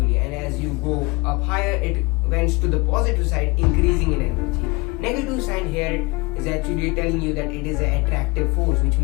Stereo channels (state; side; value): quieter; right; 25.3 dB